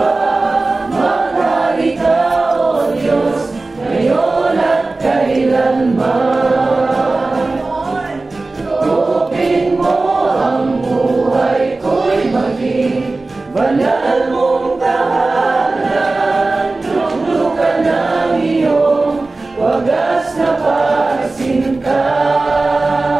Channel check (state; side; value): quieter; left; 3.3 dB